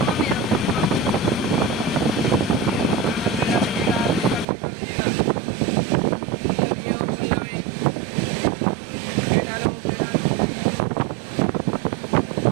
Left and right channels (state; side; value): drops out; left; at 4.5 s